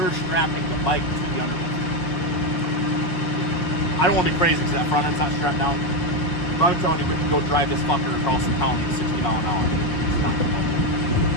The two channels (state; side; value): late; right; 6.0 ms